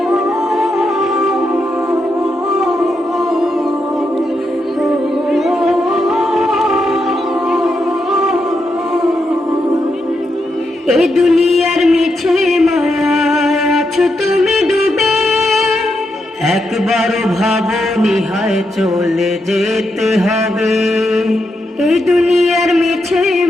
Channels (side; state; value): both; normal; correlation 0.83